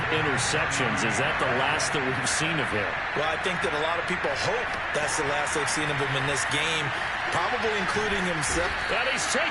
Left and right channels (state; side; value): identical; both; correlation 1.00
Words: interceptions, is that the last that we've seen of him? Well, I think that a lot of people hope that's the last they've seen of him in this game, probably including himself. And he's